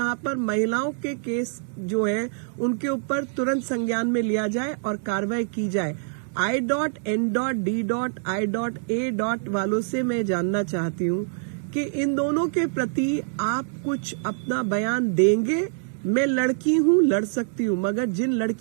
पर महिलाओं के केस जो है उनके ऊपर तुरंत संज्ञान में लिया जाए और कार्रवाई की जाए। I.N.D.I.A. वालों से मैं जानना चाहती हूँ कि इन दोनों के प्रति आप कुछ अपना बयान देंगे। मैं लड़की हूँ, लड़ सकती हूँ, मगर जिन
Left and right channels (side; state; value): left; silent; digital silence